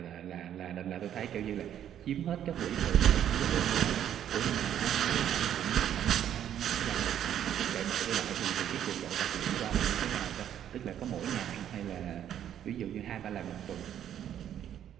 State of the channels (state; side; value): quieter; left; 10.3 dB